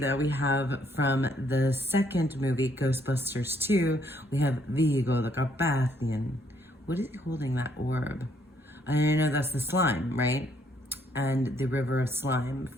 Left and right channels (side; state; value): both; normal; correlation 0.69